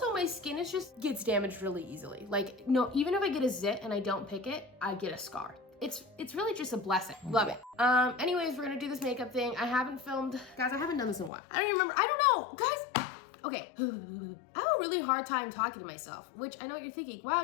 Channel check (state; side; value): drops out; right; at 11.3 s